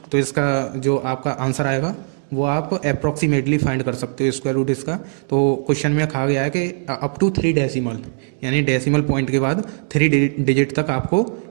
तो इसका जो आपका आंसर आएगा वो आप अप्रॉक्सीमेटली फाइंड कर सकते हो स्क्वायर रूट इसका। तो क्वेश्चन में कहा गया है कि अप टू 3 डेसिमल, यानी डेसिमल पॉइंट के बाद 3 डिजिट तक आपको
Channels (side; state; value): left; silent; digital silence